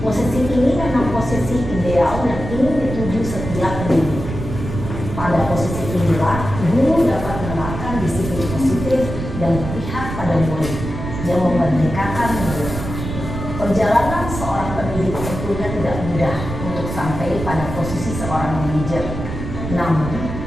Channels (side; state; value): right; noise; rumble, 7 dB below the sound